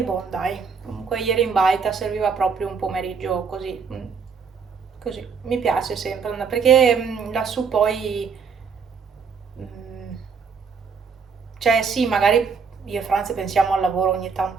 boh, dai, comunque ieri in baita serviva proprio un pomeriggio così, così. Mi piace sempre, perché lassù poi, mm, cioè sì, magari io e Franz pensiamo al lavoro ogni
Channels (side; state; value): left; quieter; 5.7 dB